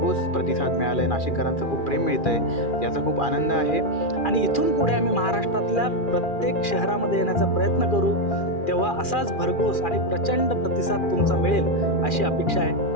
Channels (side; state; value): right; late; 2.4 ms